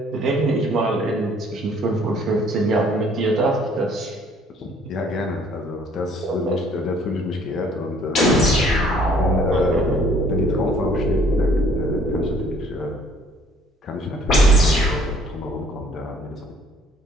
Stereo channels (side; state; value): both; normal; correlation 0.59